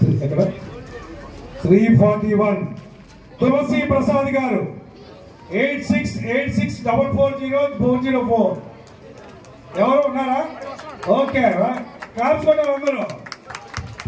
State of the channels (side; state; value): both; identical; correlation 1.00